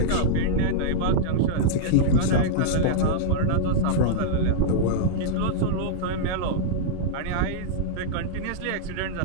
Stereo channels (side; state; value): both; different; correlation -0.02